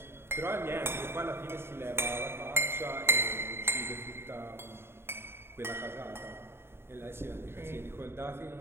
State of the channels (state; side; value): late; left; 0.11 ms